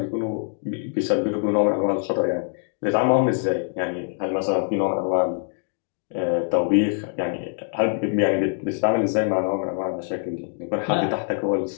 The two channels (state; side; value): silent; right; 63 dB below the other